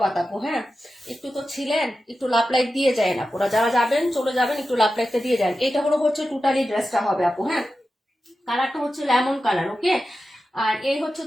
আপু, হ্যাঁ। একটু তো ছিলেন, একটু লাভ লাইক দিয়ে যায় না পুরা, যারা যাবেন চলে যাবেন একটু লাভ লাইকটা দিয়ে যান। এটা হলো হচ্ছে টোটালি ড্রেসটা হবে আপু, হ্যাঁ। কালারটা হচ্ছে লেমন কালার, ওকে। আর এই হচ্ছে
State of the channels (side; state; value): both; normal; correlation 0.92